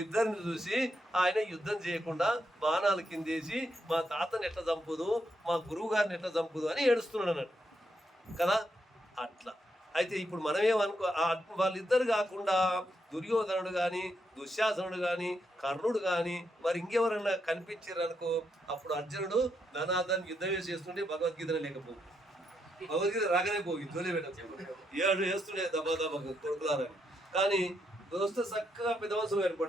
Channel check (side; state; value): both; normal; correlation 0.80